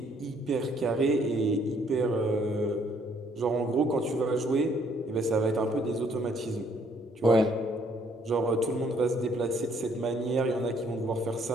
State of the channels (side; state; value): both; normal; correlation 0.65